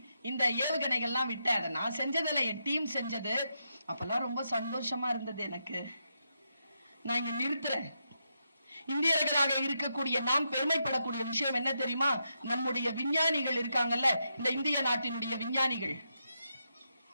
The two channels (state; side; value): inverted; both; correlation -0.83